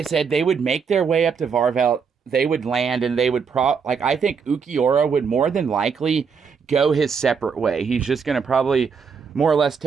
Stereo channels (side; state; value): left; quieter; 6.0 dB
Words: said, they would make their way up to Varvelt. They would land and they would I think Ulquiorra would more than likely go his separate way. He's just going to probably more or less